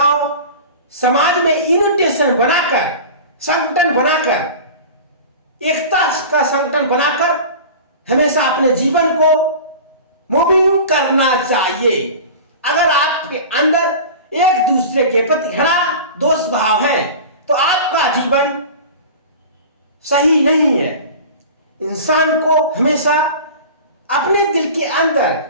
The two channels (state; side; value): inverted; both; correlation -0.35